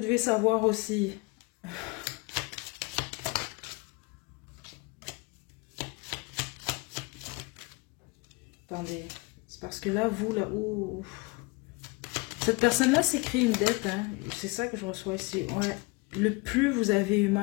devez savoir aussi... Attendez. C'est parce que là, vous, là... Ouh. Cette personne-là s'est créé une dette, hein. C'est ça que je reçois ici. Ouais. Le plus vous avez eu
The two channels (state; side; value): quieter; right; 26.4 dB